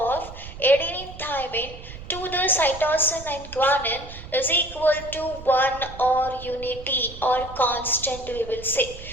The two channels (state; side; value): noise; right; rumble, 14 dB below the sound